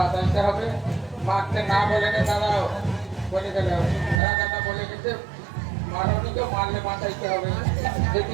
হবে, মারতে না বলে নে দাঁড়াও বলে গেলে রাজাটা বলে গেছে মারণিকে মারলে বাঁচাইতে হবে।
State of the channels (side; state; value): left; drops out; at 4.2 s